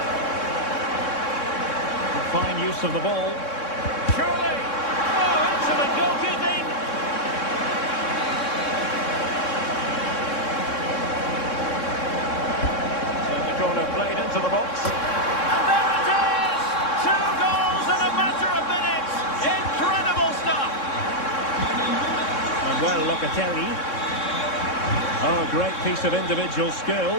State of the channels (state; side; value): late; right; 3.6 ms